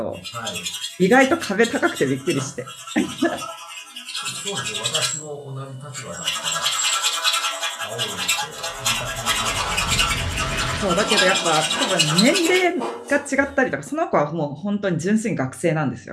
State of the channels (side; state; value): both; identical; correlation 1.00